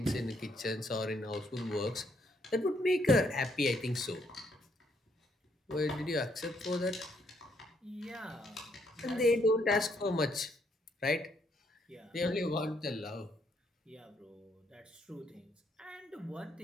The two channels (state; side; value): normal; both; correlation 0.72